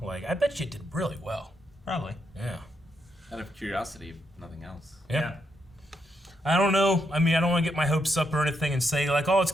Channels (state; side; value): normal; both; correlation 0.80